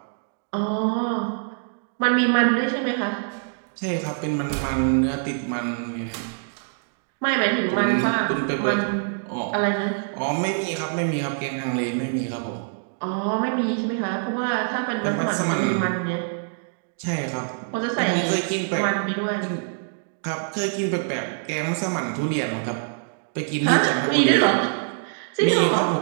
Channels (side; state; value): left; silent; digital silence